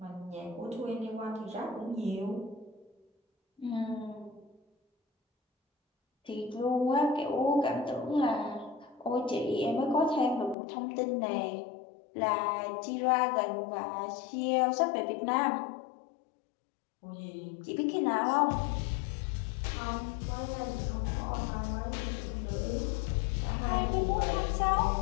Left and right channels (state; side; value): drops out; right; at 10.6 s